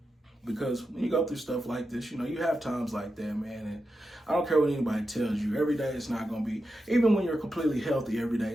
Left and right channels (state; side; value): normal; both; correlation 0.89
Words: because when you go through stuff like this, you have times like that, man, and I don't care what anybody tells you. Every day it's not going to be, even when you're completely healthy, every day